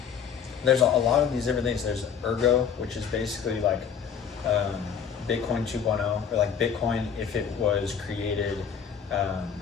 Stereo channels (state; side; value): quieter; right; 7.4 dB